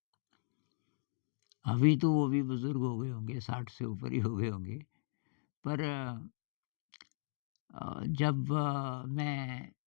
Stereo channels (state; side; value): silent; right; digital silence